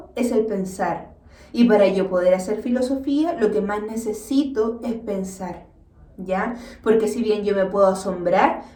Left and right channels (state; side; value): identical; both; correlation 1.00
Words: es el pensar. Y para yo poder hacer filosofía, lo que más necesito es pensar, ¿ya? Porque si bien yo me puedo asombrar,